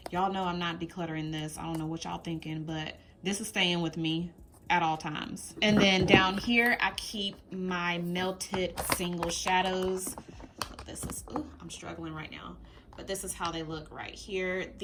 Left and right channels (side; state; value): both; identical; correlation 1.00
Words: Y'all know I'm not decluttering this. I don't know what y'all thinking, but this is staying with me at all times. And then down here, I keep my melted single shadows. This is, ooh, I'm struggling right now, but this is how they look right here.